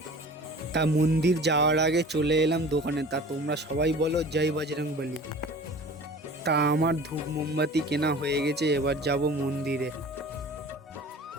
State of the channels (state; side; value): normal; both; correlation 0.42